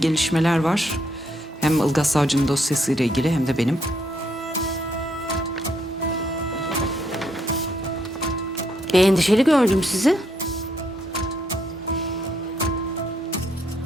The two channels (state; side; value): normal; both; correlation 0.74